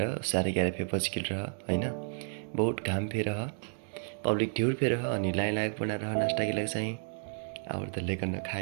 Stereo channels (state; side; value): silent; left; digital silence